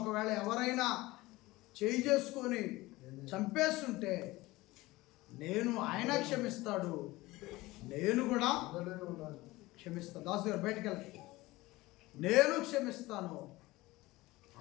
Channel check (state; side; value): quieter; right; 19.7 dB